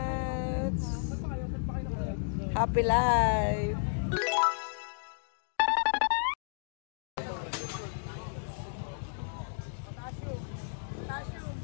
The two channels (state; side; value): silent; right; digital silence